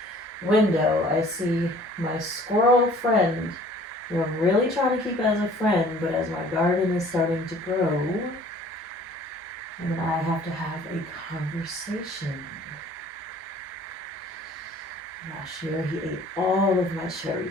window, I see my squirrel friend, who I'm really trying to keep as a friend, but as my garden is starting to grow, and I have to have a conversation. Last year he ate all of my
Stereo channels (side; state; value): both; normal; correlation 0.52